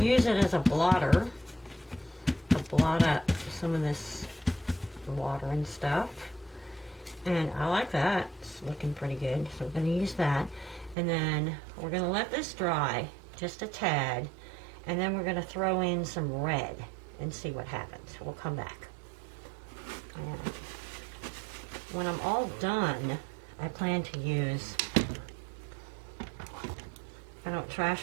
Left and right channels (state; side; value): drops out; left; at 11.0 s